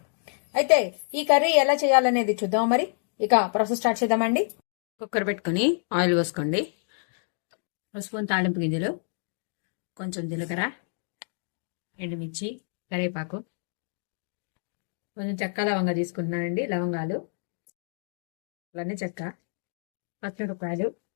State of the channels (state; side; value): silent; right; digital silence